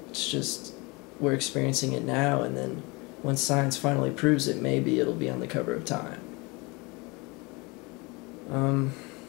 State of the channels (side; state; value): right; quieter; 26.6 dB